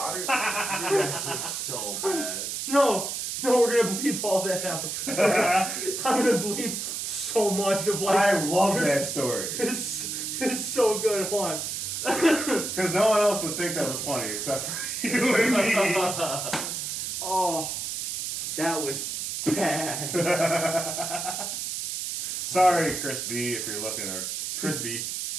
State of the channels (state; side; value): noise; right; hiss, 4 dB below the sound